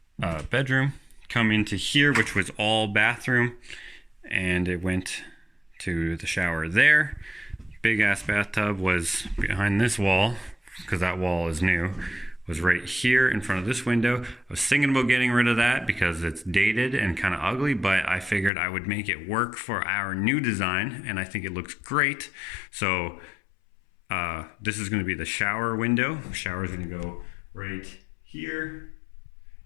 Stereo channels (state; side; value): drops out; right; at 18.5 s